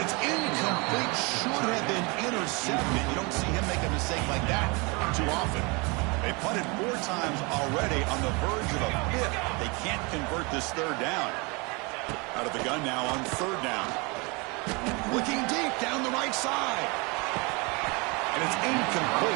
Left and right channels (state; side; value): quieter; left; 28.5 dB